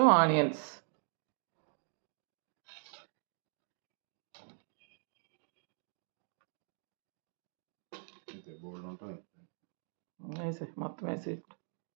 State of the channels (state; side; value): silent; left; digital silence